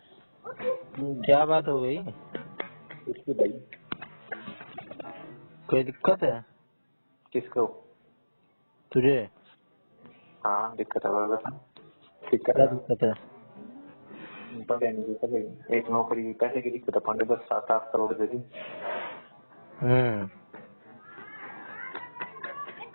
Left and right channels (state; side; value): inverted; both; correlation -1.00